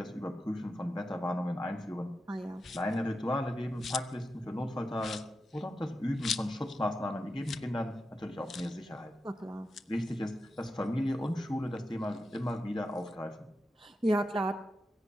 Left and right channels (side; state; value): both; normal; correlation 0.89